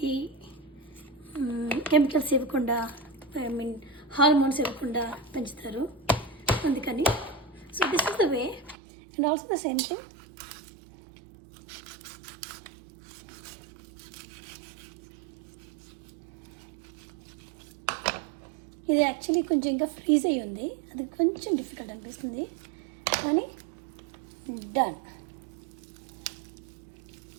కెమికల్స్ ఇవ్వకుండా, హార్మోన్స్ ఇవ్వకుండా పెంచుతారు, అందుకని. So this is the way. And also the same thing, ఇది యాక్చువల్లీ కొంచెం ఇంకా ఫ్రీజ్ అయ్యి ఉంది, అది కొంచెం డిఫికల్ట్ అనిపిస్తుంది, కానీ డన్.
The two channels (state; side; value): drops out; left; at 8.8 s